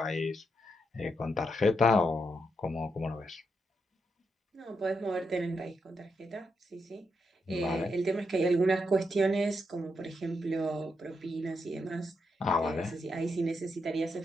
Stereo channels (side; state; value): both; normal; correlation 0.82